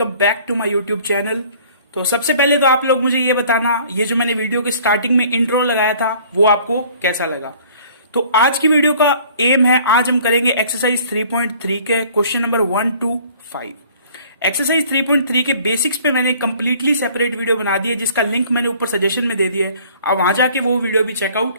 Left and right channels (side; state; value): both; inverted; correlation -0.53